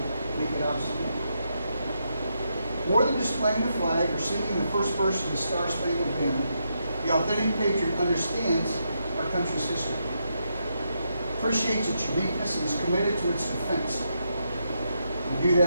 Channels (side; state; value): both; inverted; correlation -0.81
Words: make it obsolete. More than displaying the flag or singing the first verse of the Star-Spangled Banner, the authentic patriot understands our country's history, appreciates its uniqueness, and is committed to its defense. We do